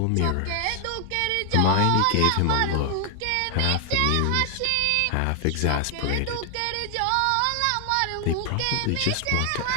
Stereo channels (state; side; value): different; both; correlation 0.00